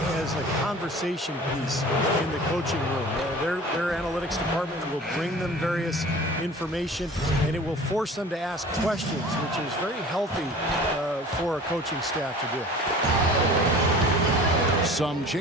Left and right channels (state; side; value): normal; both; correlation 0.43